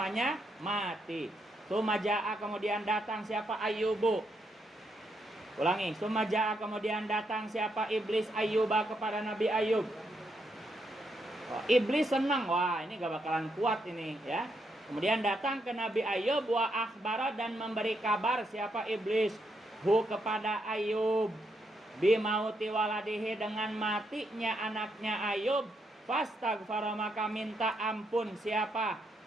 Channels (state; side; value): normal; both; correlation 0.79